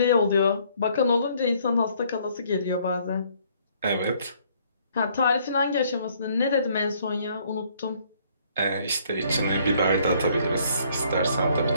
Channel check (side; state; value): both; inverted; correlation -0.63